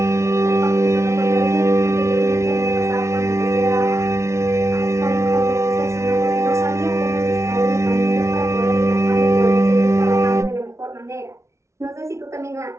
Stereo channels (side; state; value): left; late; 0.14 ms